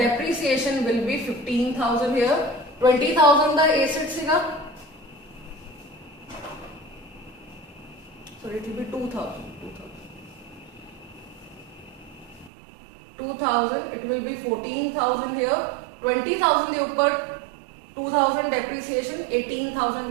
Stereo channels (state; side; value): drops out; left; at 12.5 s